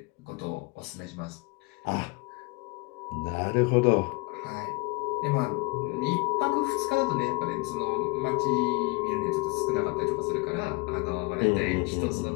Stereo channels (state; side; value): quieter; right; 27.4 dB